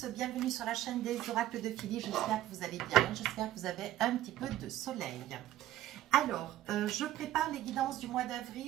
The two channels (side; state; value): left; quieter; 13.6 dB